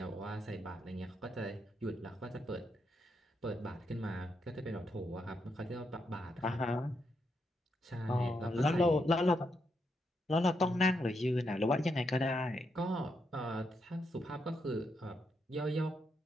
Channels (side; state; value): both; normal; correlation 0.80